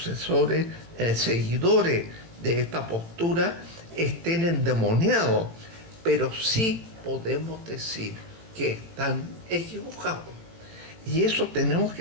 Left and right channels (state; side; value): late; left; 18 ms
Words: seguidores de esta postura estén endemoniados, pero sí podemos decir que están equivocados. Y eso tenemos